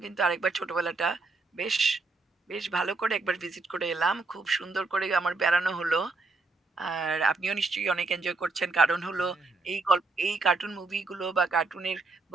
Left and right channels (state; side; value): quieter; left; 3.5 dB